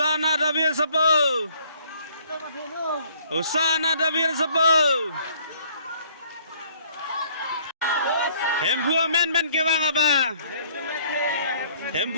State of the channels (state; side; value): inverted; both; correlation -0.60